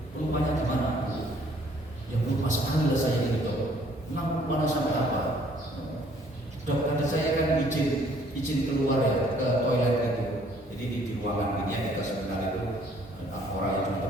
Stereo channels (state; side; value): normal; both; correlation 0.61